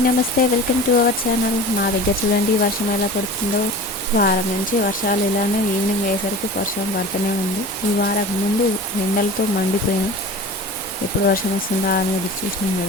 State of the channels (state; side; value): normal; both; correlation 0.37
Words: నమస్తే. Welcome to our channel. మా దగ్గర చూడండి వర్షం ఎలా పడుతుందో. వారం నుంచి వర్షాలు ఇలానే ఈవినింగ్ అయ్యేసరికి వర్షం పడుతూనే ఉంది. ఈ వారం ముందు ఎండలతో మండిపోయినాం. ఎప్పుడు వర్షం వస్తుందా అని ఎదురు చూసినాం